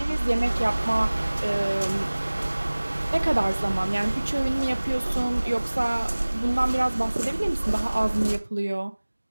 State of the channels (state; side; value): inverted; both; correlation -1.00